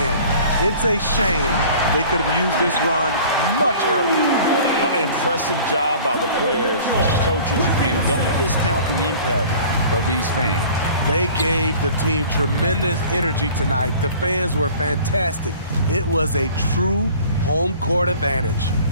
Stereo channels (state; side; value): inverted; both; correlation -0.46